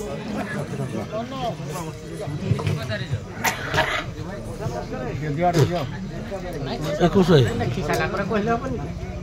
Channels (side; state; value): both; identical; correlation 1.00